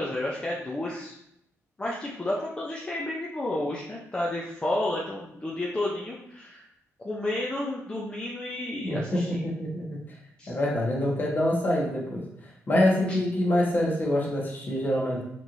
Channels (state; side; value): normal; both; correlation 0.85